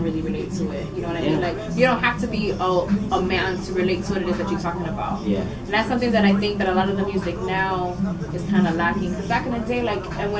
really relate to it. You know what I mean? Like, you don't have to be a man to relate to what it is that you're talking about. Yeah. And that's something that I think that a lot of the music now is kind of lacking. Because back in the day, like, and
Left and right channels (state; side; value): identical; both; correlation 1.00